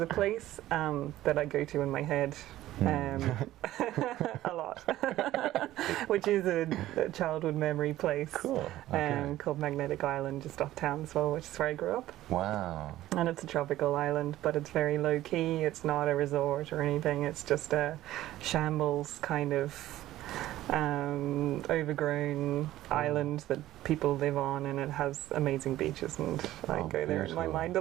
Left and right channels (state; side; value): quieter; left; 14.7 dB